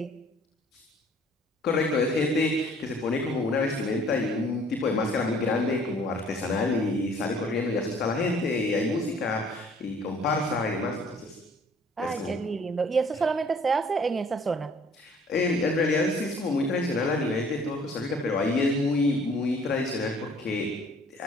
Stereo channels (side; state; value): both; normal; correlation 0.56